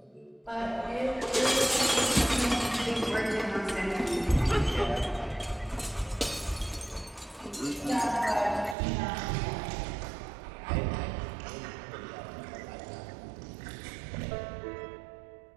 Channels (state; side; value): drops out; left; at 8.8 s